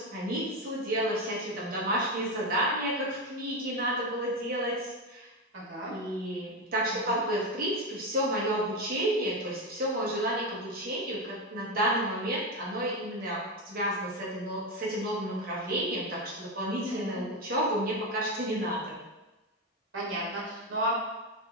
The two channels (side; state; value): both; normal; correlation 0.13